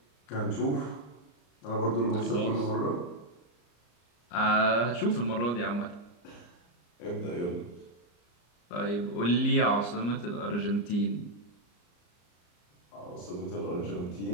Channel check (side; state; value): right; late; 34 ms